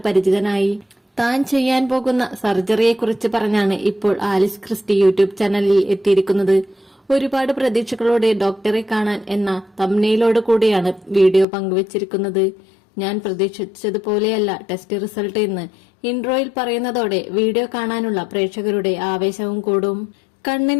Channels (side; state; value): right; drops out; at 11.5 s